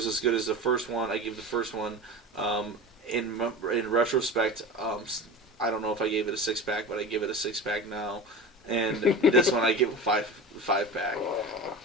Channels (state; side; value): normal; both; correlation 0.30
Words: as good as the first one. I give the first one, in retrospect, I don't know if I gave it a 6-pack, but I give it a 6-pack now. And this one I give a 5-pack. Oh,